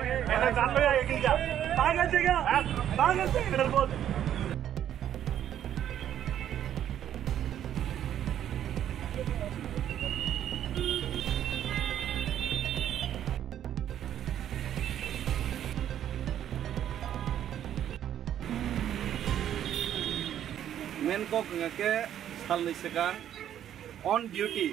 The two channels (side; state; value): left; quieter; 10.5 dB